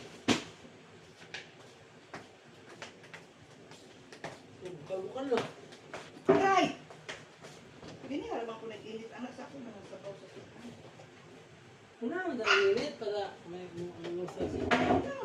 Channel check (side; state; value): both; identical; correlation 1.00